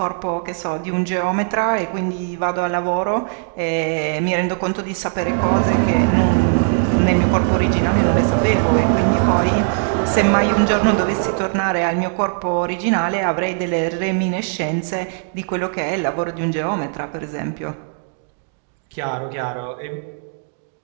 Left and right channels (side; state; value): left; silent; 66 dB below the other